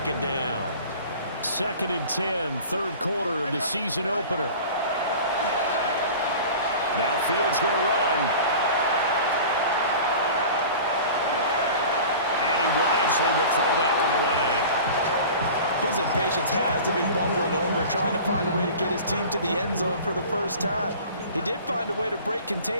down. 2nd and 10, 3rd quarter of the season opener. Now Fields going to run. And he wisely will throw that one away. His impatience has to be bumbling over, trying to find a way to get his team to the end zone for the first time. He did find a way to break,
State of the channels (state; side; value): inverted; both; correlation -0.40